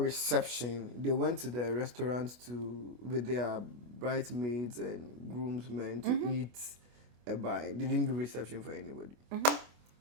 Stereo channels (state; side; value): late; left; 25 ms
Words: they went to the restaurant with their bridesmaids and groomsmen to eat a bite. They didn't do reception for anybody.